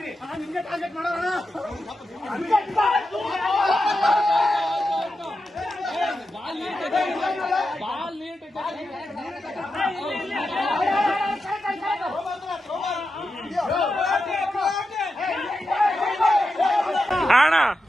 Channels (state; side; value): normal; both; correlation 0.89